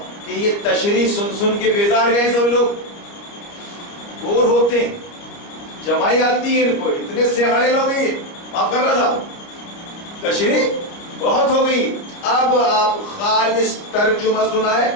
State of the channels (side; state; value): right; late; 29 ms